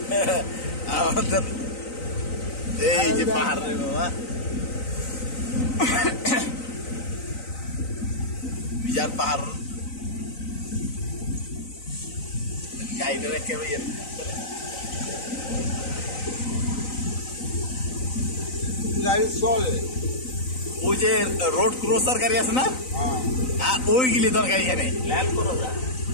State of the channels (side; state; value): right; late; 3.9 ms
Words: আমাদের এই যে পাহাড় রে বাবা, বিজার পাহাড় গাইডে রেখে গাড়ি চলে, ওই যে রোড ক্রসার গাড়ি আছে না, আর ওইগুলি দরকার এখানে ল্যান্ড করো যা,